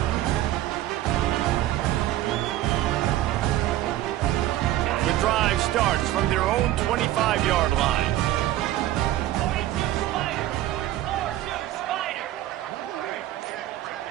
Drive starts from their own 25-yard line.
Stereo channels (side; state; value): left; quieter; 14.3 dB